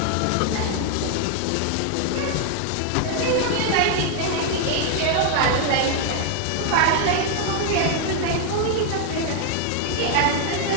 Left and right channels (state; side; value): different; both; correlation 0.00